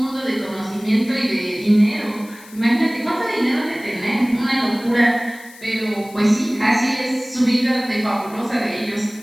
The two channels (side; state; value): left; noise; hiss, 21 dB below the sound